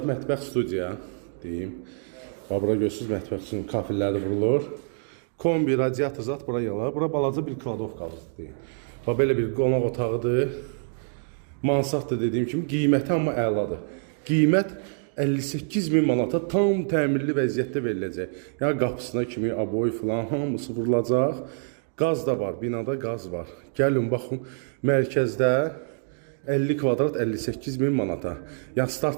mətbəx studiya, deyim. Bax, bura görürsünüz, mətbəx üçün kafilləri vurulur. Kombi, radiator zat bura yalar. Bura balaca bir kladovkalıdır, deyim. Bax, belə bir qonaq otağıdır. Mansarddır dediyim kimi, qiyməti amma əladır. Qiymət 58.000 manata tam təmirli vəziyyətdə veriləcək. Yəni qapısına kimi aboy filan hamısı vurulacaq. Qaz da var, binada qaz var. Gəlin baxın, mərkəzdə 50 kvadrat 58.000 manata. Yəni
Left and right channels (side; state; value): left; silent; digital silence